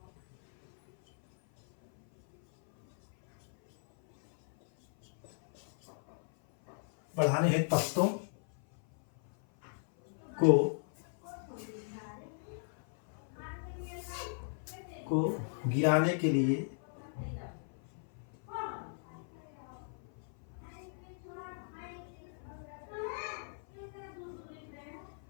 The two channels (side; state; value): right; silent; 53 dB below the other